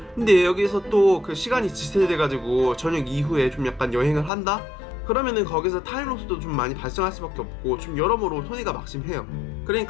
근데 여기서 또 그 시간이 지체돼가지고 저녁 이후에 좀 약간 여행을 한다? 그러면은 거기서 타임로스도 좀 많이 발생할 수밖에 없고 좀 여러모로 손해가 막심해요.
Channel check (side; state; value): right; drops out; at 4.3 s